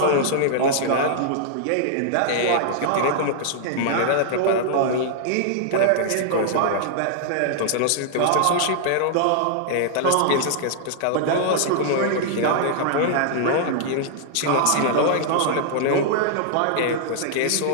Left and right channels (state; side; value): different; both; correlation -0.01